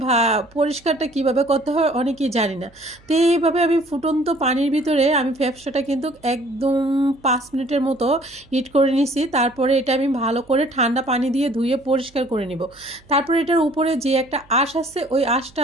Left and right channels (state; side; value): noise; right; hum, 28 dB below the sound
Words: বা পরিষ্কারটা কিভাবে করতে হয় অনেকেই জানি না। তো এইভাবে আমি ফুটন্ত পানির ভিতরে আমি ফ্যাপসাটা কিন্তু একদম 5 মিনিটের মতো হিট করে নিছি। তারপরে এটা আমি ভালো করে ঠান্ডা পানি দিয়ে ধুয়ে পরিষ্কার করে নিব। তারপরে এটার উপরে যে একটা আঁশ আছে ওই আঁশটা